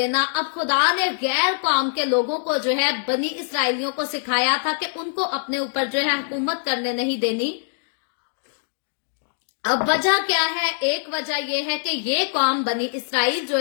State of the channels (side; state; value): right; silent; digital silence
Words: अब खुदा ने गैर कौम के लोगों को जो है बनी इसराइलियों को सिखाया था कि उनको अपने ऊपर जो है हुकूमत करने नहीं देनी। अब वजह क्या है? एक वजह यह है कि ये कौम बनी इसराइल जो